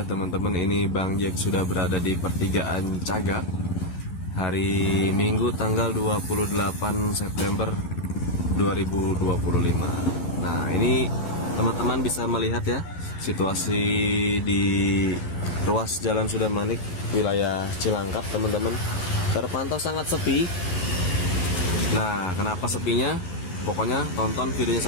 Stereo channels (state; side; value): late; right; 12 ms